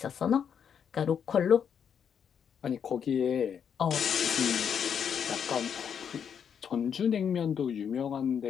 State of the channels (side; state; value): right; quieter; 7.7 dB